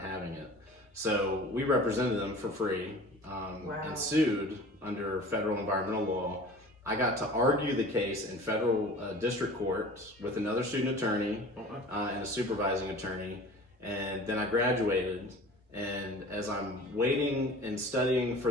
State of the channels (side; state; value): both; normal; correlation 0.42